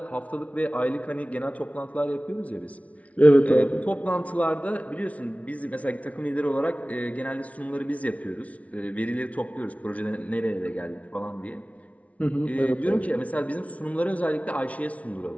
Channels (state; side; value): late; right; 0.066 ms